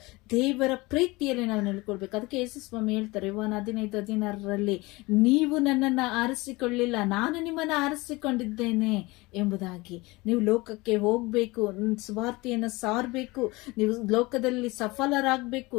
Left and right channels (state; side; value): quieter; right; 22.8 dB